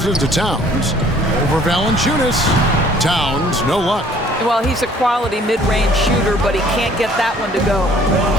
to Towns. Over Valanciunas. Towns, no luck. Well, he's a quality mid-range shooter, but he can't get that one to go.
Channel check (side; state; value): both; normal; correlation 0.57